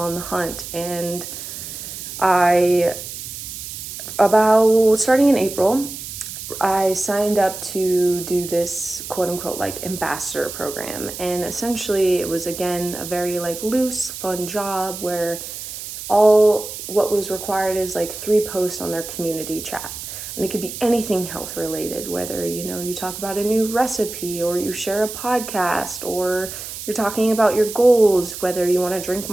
the hunt. And I, about starting in April, I signed up to do this quote unquote like ambassador program. And essentially it was again a very like loose, fun job where all what was required is like 3 posts on their community chat. And it could be anything health related, whether, you talk about a new recipe, or you share a podcast, or you're talking about your goals, whether you want to drink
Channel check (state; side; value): noise; right; hiss, 9 dB below the sound